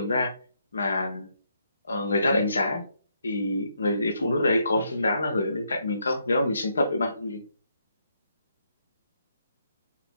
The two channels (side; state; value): both; inverted; correlation -0.76